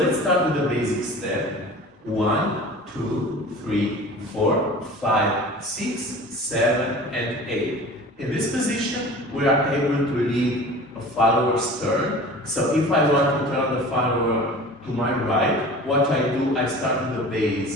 start with the basic step. 1, 2, 3, 4, 5, 6, 7, and 8. In this position, we are able to lead a follower's turn. So if I want to turn the follower to my right, what I do, I start with the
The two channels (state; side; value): normal; both; correlation 0.40